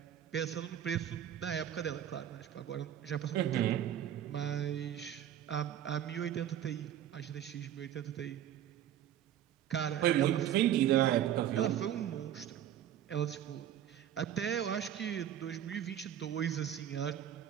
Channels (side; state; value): left; quieter; 10.7 dB